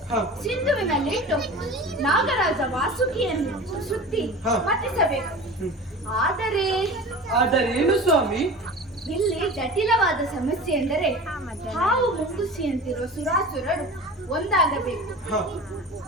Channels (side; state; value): both; normal; correlation 0.35